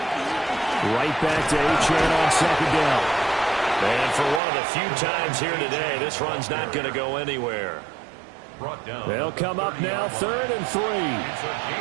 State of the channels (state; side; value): drops out; left; at 4.4 s